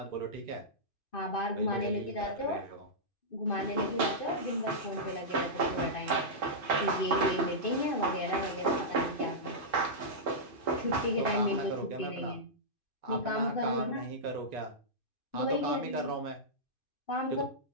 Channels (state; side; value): late; right; 2.6 ms